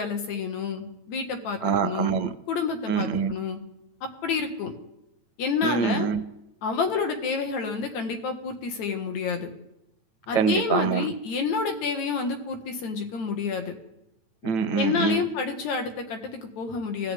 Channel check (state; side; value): late; right; 9.0 ms